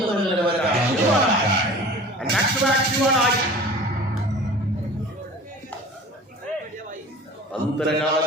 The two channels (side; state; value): both; normal; correlation 0.41